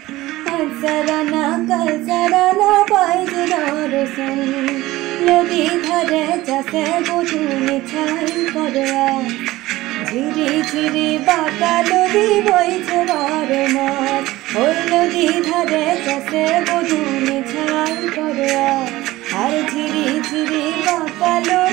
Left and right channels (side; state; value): left; quieter; 17.7 dB